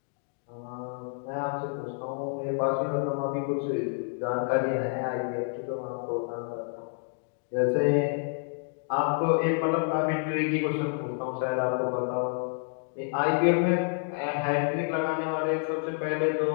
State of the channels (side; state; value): right; silent; 59 dB below the other